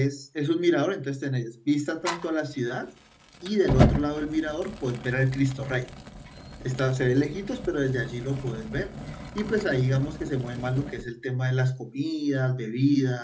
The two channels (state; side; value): identical; both; correlation 1.00